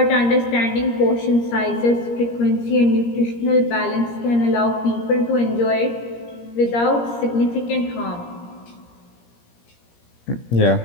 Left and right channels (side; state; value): right; late; 17 ms